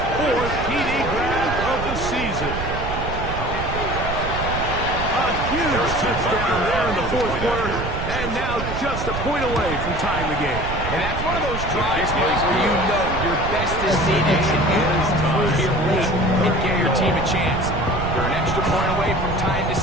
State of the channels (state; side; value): noise; right; rumble, 6 dB below the sound